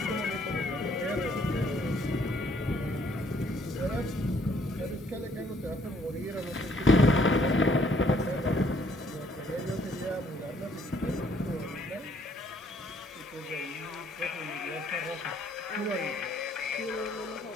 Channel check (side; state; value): both; normal; correlation 0.65